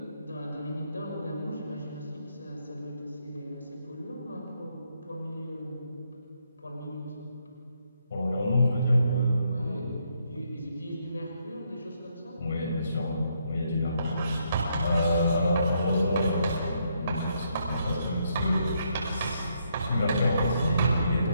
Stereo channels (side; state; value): both; inverted; correlation -0.75